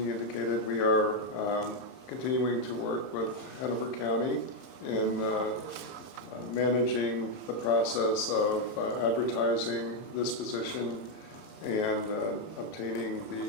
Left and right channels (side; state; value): right; late; 31 ms